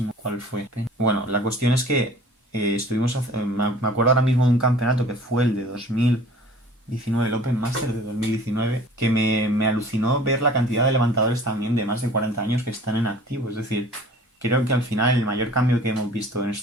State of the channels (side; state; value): both; normal; correlation 0.47